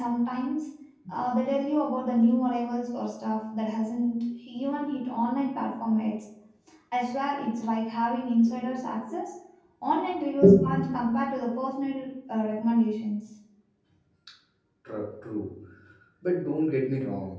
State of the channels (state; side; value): identical; both; correlation 1.00